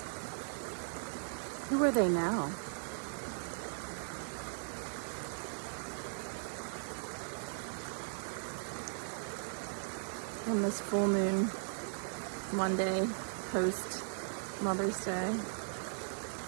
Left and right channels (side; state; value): left; silent; 52 dB below the other